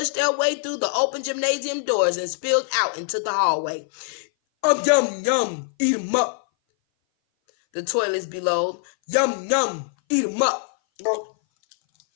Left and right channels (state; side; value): silent; right; 59 dB below the other